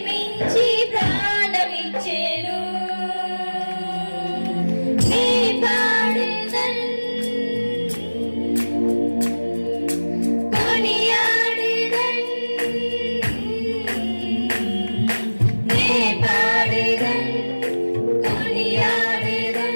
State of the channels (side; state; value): both; inverted; correlation -1.00